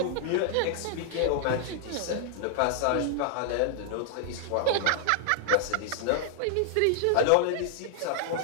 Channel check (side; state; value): both; different; correlation 0.00